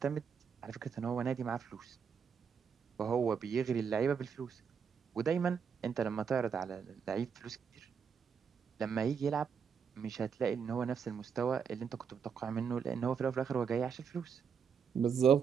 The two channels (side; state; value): left; quieter; 6.7 dB